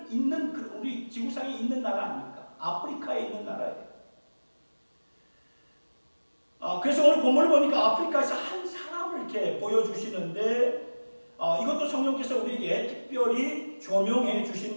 있는 우리 지구상에 있는 나라 아닙니까? 아프리카에 있는 나라예요. 그래서 오늘 본문을 보니까 아프리카에서 한 사람을 이렇게 보여주시는데 이것도 성령께서 우리에게 특별히 조명해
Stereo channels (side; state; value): both; inverted; correlation -1.00